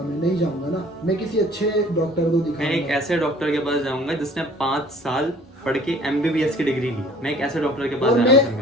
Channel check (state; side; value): normal; both; correlation 0.51